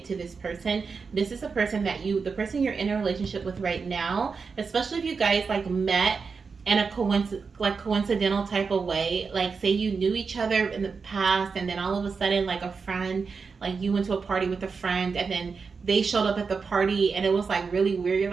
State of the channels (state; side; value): quieter; left; 5.1 dB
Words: to this person. This is a person that the person you're in a relationship with right now, especially if you guys like met in a coincidental type of way. Like say you knew each other in the past, and then all of a sudden like a friend, like you went to a party with a friend, and then they showed up at the party and it was like really weird. You're